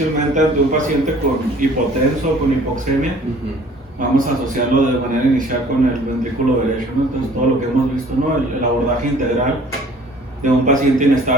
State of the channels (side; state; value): both; normal; correlation 0.52